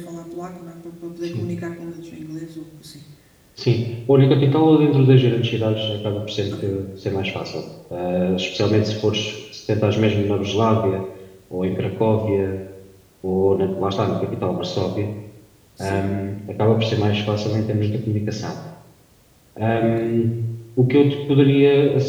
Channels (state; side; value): identical; both; correlation 1.00